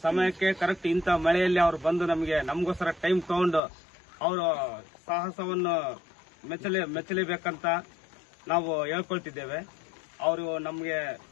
ಸಮಯಕ್ಕೆ ಕರೆಕ್ಟ್ ಇಂಥ ಮಳೆಯಲ್ಲಿ ಅವ್ರು ಬಂದು ನಮಗೋಸ್ಕರ ಟೈಮ್ ತಗೊಂಡು ಅವರು ಸಾಹಸವನ್ನು ಮೆಚ್ಚಲೇಬೇಕಂತ ನಾವು ಹೇಳ್ಕೊಳ್ತಿದ್ದೇವೆ. ಅವರು ನಮಗೆ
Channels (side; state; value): right; drops out; at 3.6 s